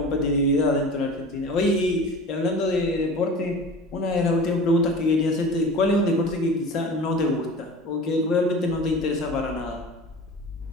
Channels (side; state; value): both; normal; correlation 0.37